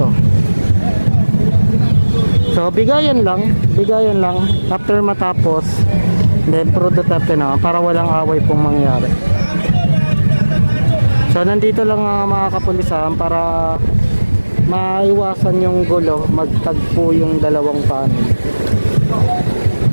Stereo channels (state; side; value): inverted; both; correlation -1.00